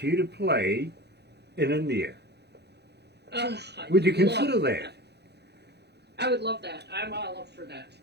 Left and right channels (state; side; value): late; left; 0.48 ms